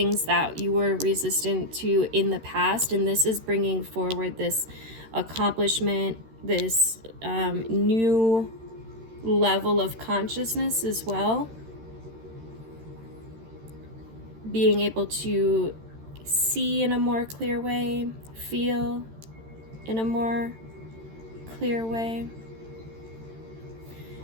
that you were resistant to in the past. And this is bringing forward this accomplishment, this new level of consciousness as well. Being able to see in a more clear way, feel in a more clear way.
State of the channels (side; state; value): left; late; 13 ms